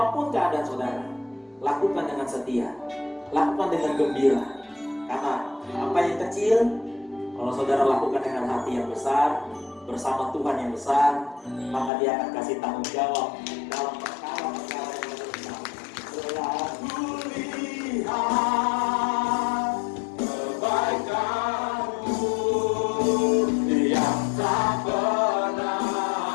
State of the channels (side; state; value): right; drops out; at 11.9 s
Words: keadaan saudara, lakukan dengan setia, lakukan dengan gembira. Karena apa yang kecil, kalau saudara lakukan dengan hati yang besar, bersama Tuhan yang besar, maka Dia akan kasih tanggung jawab dalam perkara-perkara yang besar. Selalu lihat kebaikan-Mu yang tak pernah